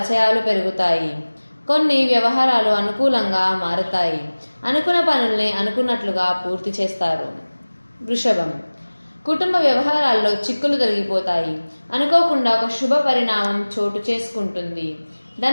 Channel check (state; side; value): inverted; both; correlation -1.00